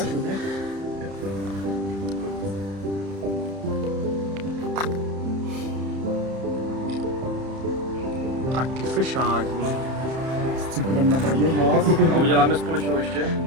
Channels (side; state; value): left; late; 31 ms